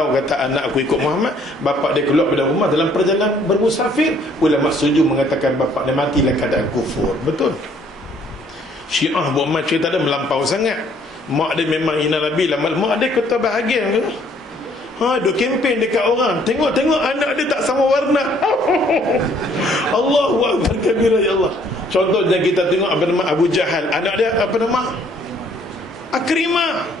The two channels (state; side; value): normal; both; correlation 0.62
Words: kata anak aku ikut Muhammad. Bapak dia keluar dari rumah dalam perjalanan bermusafir. Ulama setuju mengatakan bapak dia mati dalam keadaan kufur. Betul. Syiah buat macam cerita dia melampau sangat. Mak dia memang hina Nabi lah. Mak dia ketua bahagian ke? Duk kempen dekat orang. Tengok anak dia tak sama warna. Allahu Akbar kabira, ya Allah. Contohnya kita tengok apa nama Abu Jahal, anak dia apa nama? Akrimah.